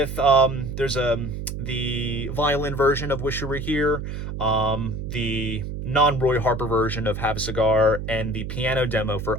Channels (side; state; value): right; noise; hum, 6 dB below the sound